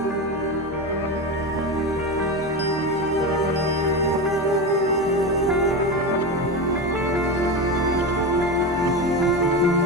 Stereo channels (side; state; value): both; normal; correlation 0.20